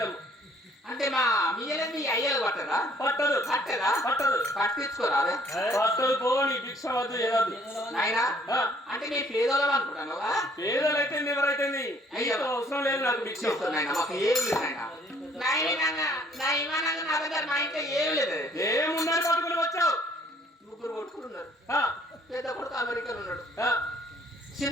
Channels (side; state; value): both; normal; correlation 0.61